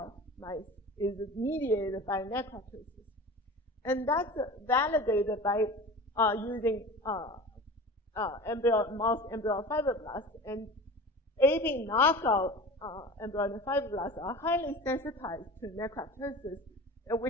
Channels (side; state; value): both; normal; correlation 0.35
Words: mice is mediated by necroptosis. And that's validated by using mouse embryo fibroblasts. And ABIN knockout embryonic fibroblasts are highly sensitized to necroptosis,